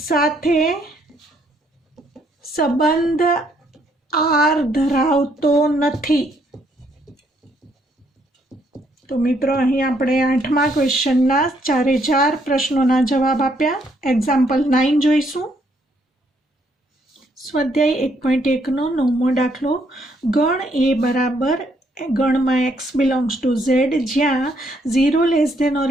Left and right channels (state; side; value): normal; both; correlation 0.71